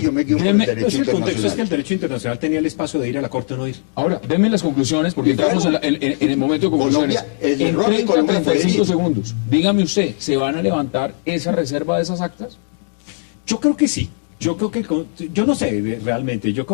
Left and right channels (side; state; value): right; silent; digital silence